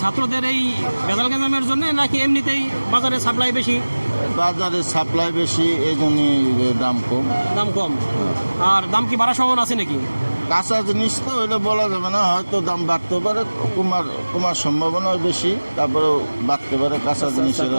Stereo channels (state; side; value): inverted; both; correlation -1.00